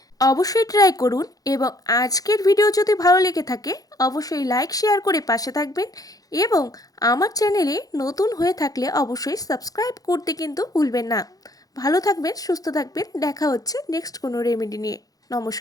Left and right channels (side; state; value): right; late; 0.18 ms